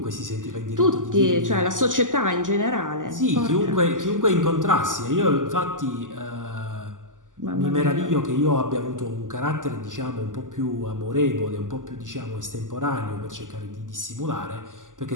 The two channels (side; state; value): left; late; 0.88 ms